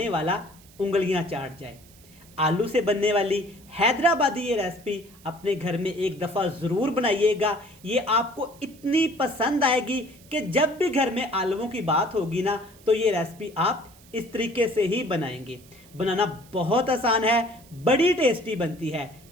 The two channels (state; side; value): noise; right; hiss, 25 dB below the sound